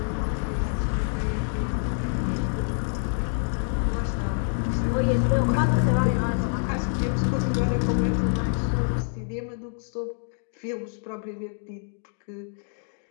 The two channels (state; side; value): silent; right; 60 dB below the other